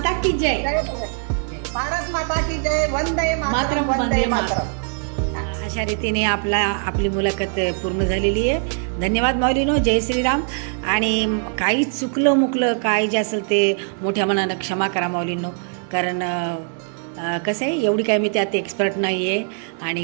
की जय, भारत माता की जय. वंदे मातरम, वंदे मातरम. अशा रीतीने आपली मुलाखत पूर्ण झालेली आहे. धन्यवाद माऊलीनो. जय श्रीराम. आणि काही चुकलं मुकलं काय जे असेल ते मोठ्या मनानं क्षमा करा माऊलींनो, कारण कसं आहे एवढी काय मी त्यात एक्सपर्ट नाही आहे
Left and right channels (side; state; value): left; silent; 58 dB below the other